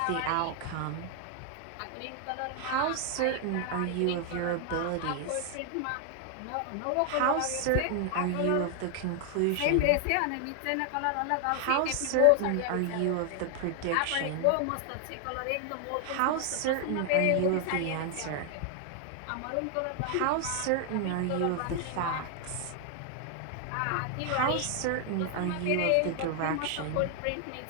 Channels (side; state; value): both; different; correlation 0.00